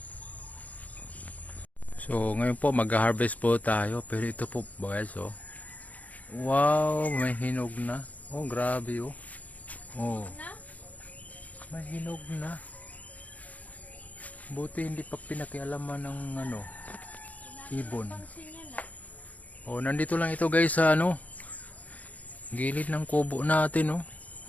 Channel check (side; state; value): right; late; 0.074 ms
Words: So, ngayon po, mag-harvest po tayo. Pero ito po, guys, oh. Wow, may hinog na. Oh, grabe, oh. Oh, may hinog na. Buti hindi pa pinakialaman ng ano, ibon. Oh, nandito lang ito guys sa ano, gilid ng kubo natin, oh.